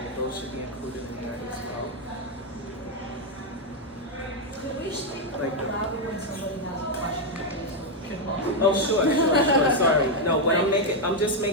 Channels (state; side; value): normal; both; correlation 0.01